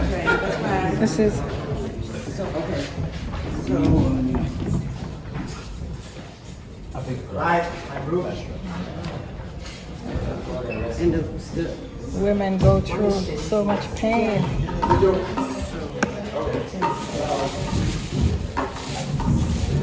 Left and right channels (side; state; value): both; identical; correlation 1.00